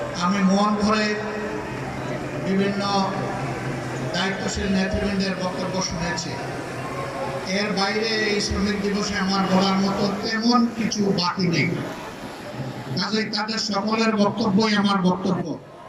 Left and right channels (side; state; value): both; identical; correlation 1.00